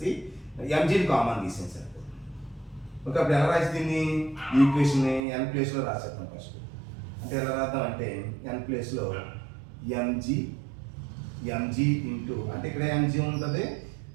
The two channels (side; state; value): left; drops out; at 5.2 s